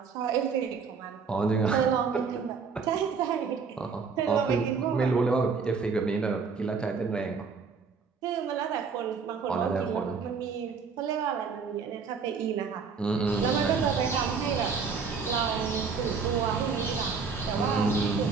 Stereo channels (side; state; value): left; quieter; 5.4 dB